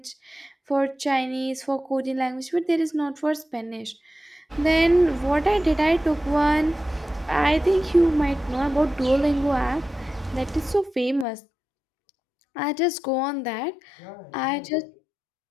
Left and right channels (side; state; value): right; drops out; at 11.2 s